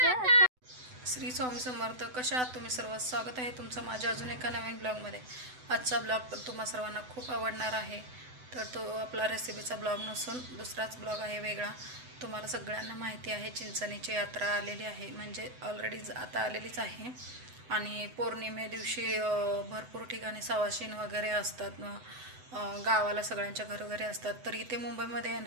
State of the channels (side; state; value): left; late; 7.9 ms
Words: स्वामी समर्थ. कशा आहात तुम्ही सर्व? स्वागत आहे तुमचं माझ्या अजून एका नवीन ब्लॉगमध्ये. आजचा ब्लॉग तुम्हा सर्वांना खूप आवडणार आहे. तर तो आपला रेसिपीचा ब्लॉग नसून दुसराच ब्लॉग आहे वेगळा. तुम्हाला सगळ्यांना माहिती आहे चिंचणीची यात्रा आलेली आहे, म्हणजे ऑलरेडी आता आलेलीच आहे. आणि पौर्णिमे दिवशी भरपूर ठिकाणी सवाशीण वगैरे असतात, गावाला सगळ्यांच्या घरोघरी असतात. तर इथे मुंबईमध्ये आहे